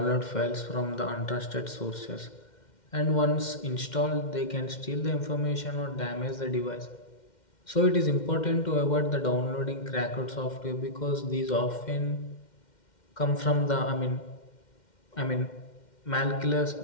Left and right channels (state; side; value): late; right; 2.1 ms